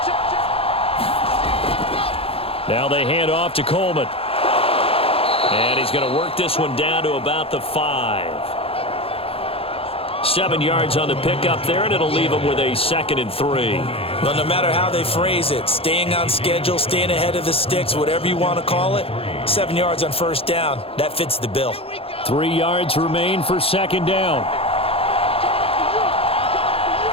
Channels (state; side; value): late; right; 0.27 ms